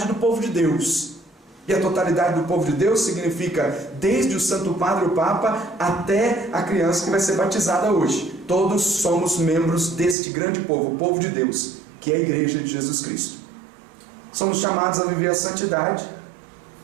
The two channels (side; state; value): left; drops out; at 10.2 s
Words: do povo de Deus. E a totalidade do povo de Deus significa desde o Santo Padre, o Papa, até a criança que vai ser batizada hoje. Todos somos membros deste grande povo, o povo de Deus, que é a igreja de Jesus Cristo. Somos chamados a viver a santidade